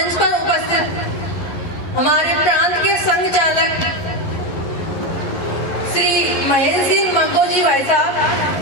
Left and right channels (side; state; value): right; late; 11 ms